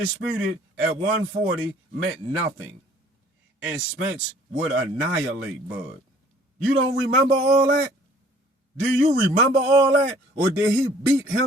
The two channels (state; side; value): normal; both; correlation 0.55